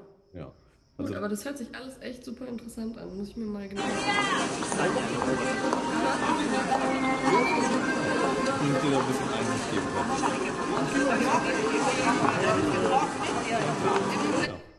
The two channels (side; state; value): both; identical; correlation 1.00